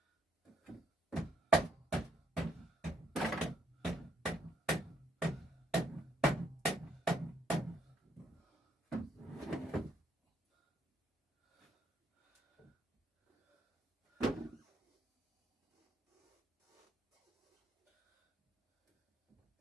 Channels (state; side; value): normal; both; correlation 0.72